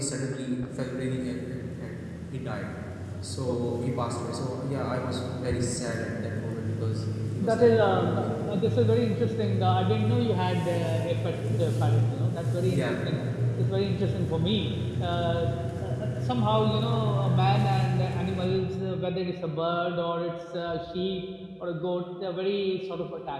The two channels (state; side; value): identical; both; correlation 1.00